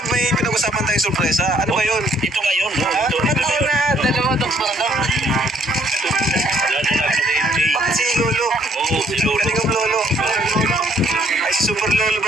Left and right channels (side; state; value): both; normal; correlation 0.66